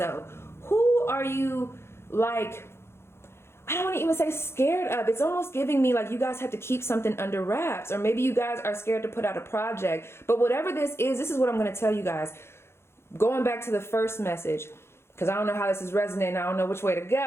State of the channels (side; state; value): right; late; 0.12 ms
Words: Who are you, like, I don't want to even say scared of. It's almost giving me like you guys have to keep something under wraps, or maybe you guys are scared to put out a project. But whatever this is what I'm going to tell you guys. Going back to the first message, because I don't know how this is resonating. I don't know which way to